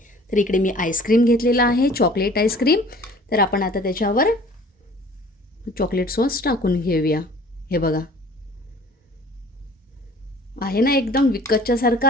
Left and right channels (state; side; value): normal; both; correlation 0.49